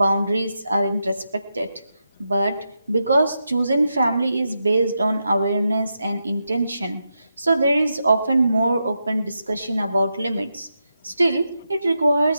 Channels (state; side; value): inverted; both; correlation -0.86